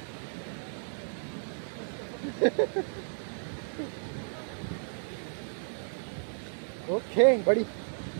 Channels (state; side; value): silent; left; digital silence